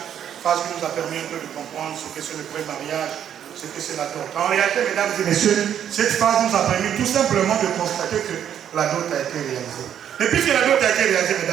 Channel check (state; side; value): quieter; left; 9.5 dB